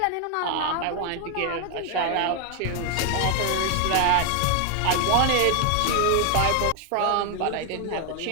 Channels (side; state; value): both; different; correlation 0.01